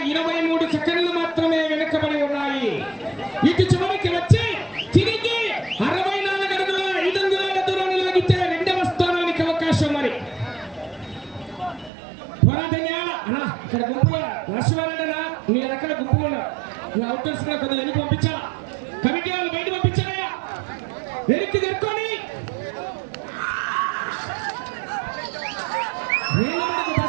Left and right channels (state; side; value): drops out; left; at 11.9 s